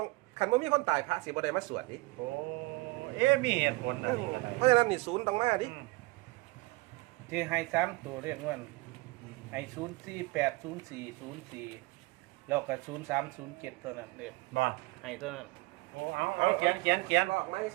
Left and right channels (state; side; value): quieter; left; 23.2 dB